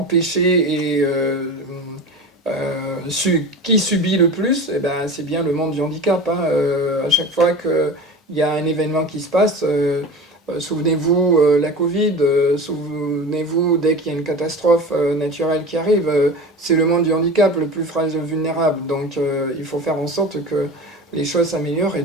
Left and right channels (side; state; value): both; normal; correlation 0.32